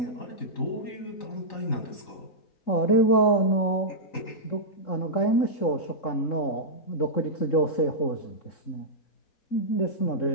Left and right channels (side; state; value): right; late; 3.9 ms